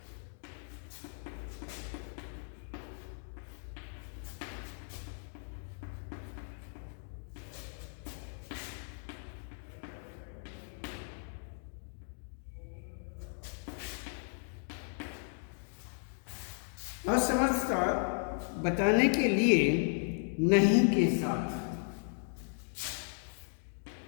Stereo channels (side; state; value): right; silent; 54 dB below the other